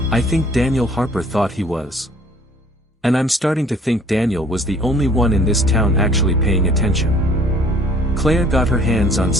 "I think Daniel Harper thought he was. And I'm starting to think Daniel was the only one in this town actually paying attention." Claire got her hands on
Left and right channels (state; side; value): normal; both; correlation 0.55